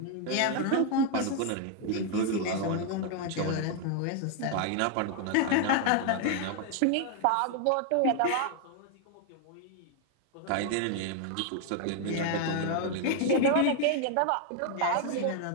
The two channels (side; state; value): both; different; correlation 0.00